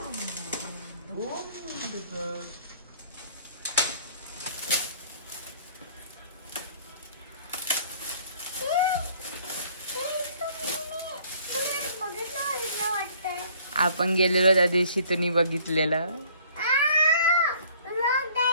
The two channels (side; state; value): both; inverted; correlation -0.57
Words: आपण गेलेलो त्या दिवशी तुम्ही बघितलेलं.